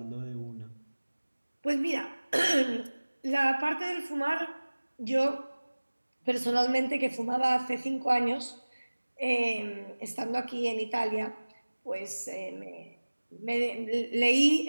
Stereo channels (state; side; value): inverted; both; correlation -1.00